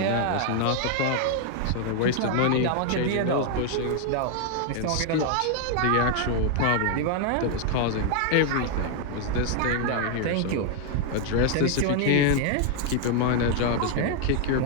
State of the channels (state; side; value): different; both; correlation 0.00